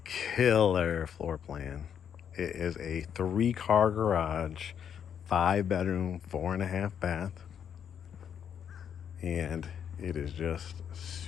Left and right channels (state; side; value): quieter; right; 8.3 dB